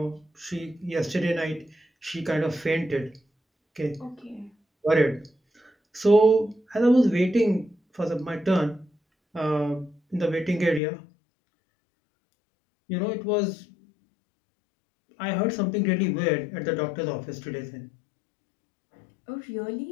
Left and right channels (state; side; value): drops out; right; at 10.8 s